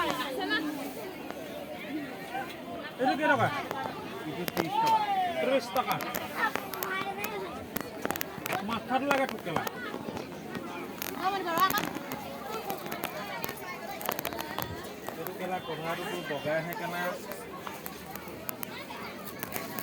এইটো কি টকা 30 টকা মাথাটো লাগে ঠুকেলা এইটো কেলা কভাৰটো বগাই আহে কেনা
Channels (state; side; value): identical; both; correlation 1.00